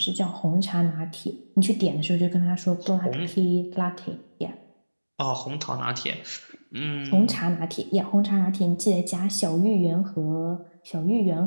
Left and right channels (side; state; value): both; inverted; correlation -1.00